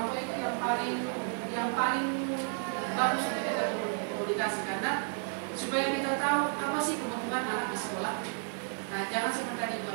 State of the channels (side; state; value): left; silent; 55 dB below the other